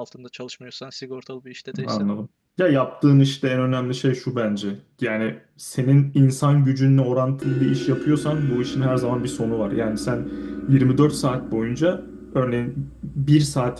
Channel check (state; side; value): identical; both; correlation 1.00